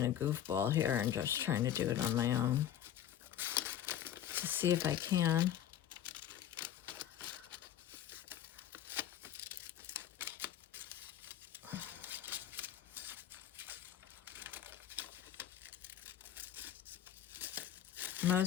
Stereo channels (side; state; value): right; quieter; 10.8 dB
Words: a goofball here and just trying to do it on my own to see if I can.